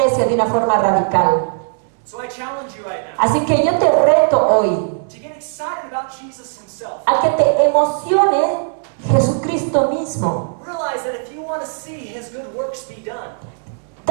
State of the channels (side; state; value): left; silent; digital silence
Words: de una forma radical. So I challenge you right now Así que yo te reto hoy to get excited about Jesus Himself. a que te emocione Jesucristo mismo. Realize that if you want to see His good works be done,